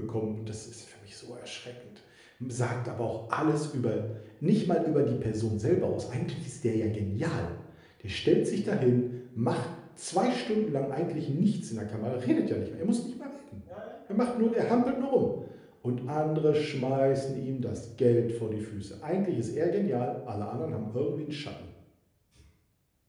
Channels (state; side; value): identical; both; correlation 1.00